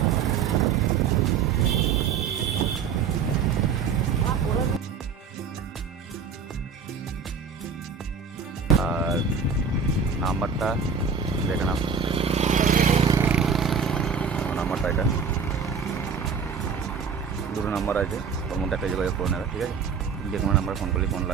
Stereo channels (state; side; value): quieter; left; 6.0 dB